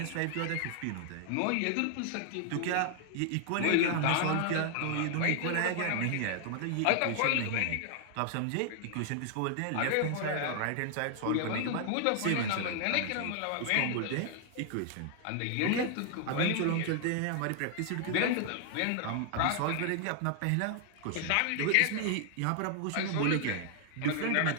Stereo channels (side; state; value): both; different; correlation 0.00